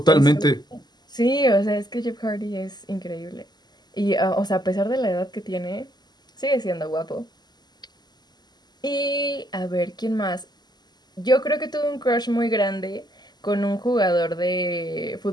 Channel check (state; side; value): late; right; 0.20 ms